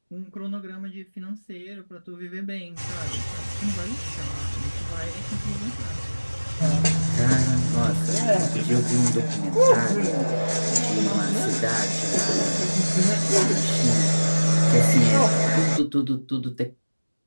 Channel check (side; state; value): both; inverted; correlation -1.00